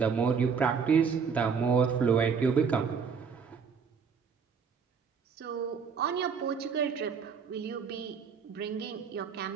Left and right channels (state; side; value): quieter; left; 6.1 dB